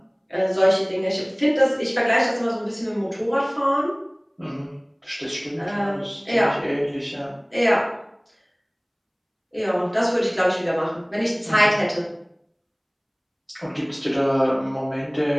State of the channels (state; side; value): identical; both; correlation 1.00